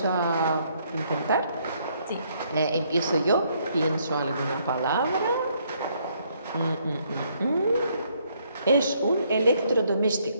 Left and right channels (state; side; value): inverted; both; correlation -0.69